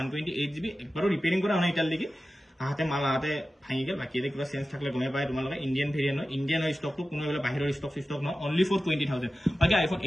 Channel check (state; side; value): normal; both; correlation 0.94